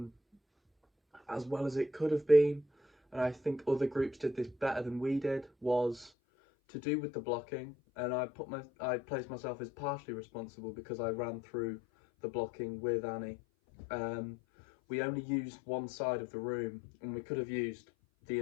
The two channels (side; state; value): right; drops out; at 6.1 s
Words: as well as it could have been, and I think other groups did this better than we did, was to do with the blocking. And I placed myself as partially responsible because I ran through the blocking with Annie. Um, we only used one side of the room, and we could have used the